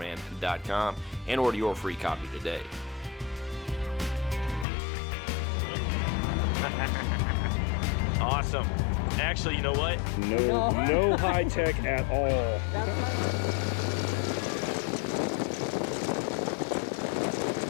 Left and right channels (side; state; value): right; drops out; at 4.7 s